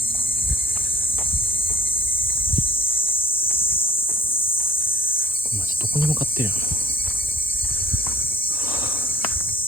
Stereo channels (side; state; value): both; normal; correlation 0.50